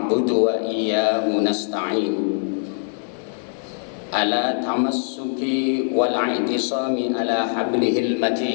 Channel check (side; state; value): right; silent; digital silence